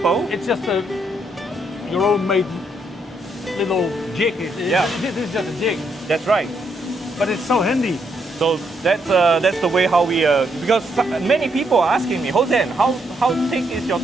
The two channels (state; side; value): normal; both; correlation 0.76